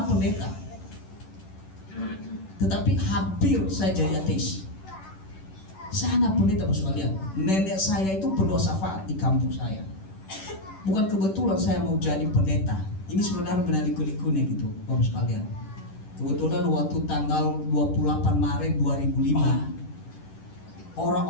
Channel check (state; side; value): late; right; 10 ms